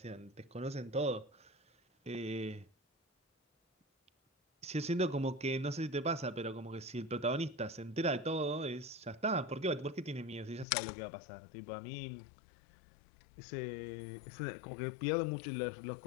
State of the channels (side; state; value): right; drops out; at 10.7 s